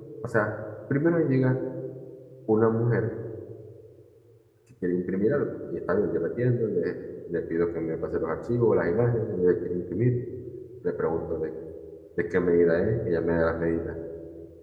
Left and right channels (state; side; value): identical; both; correlation 1.00